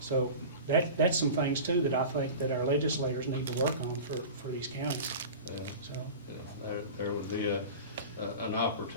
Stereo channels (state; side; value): inverted; both; correlation -0.34